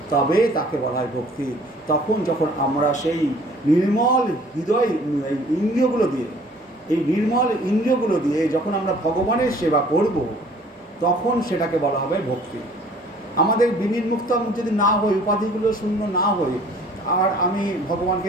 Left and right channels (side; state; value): both; normal; correlation 0.53